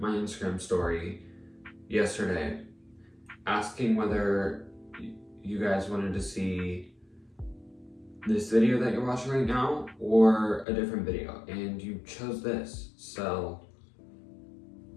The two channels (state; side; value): drops out; right; at 10.7 s